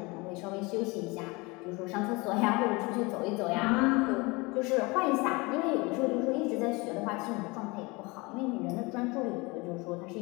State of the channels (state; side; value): quieter; right; 25.3 dB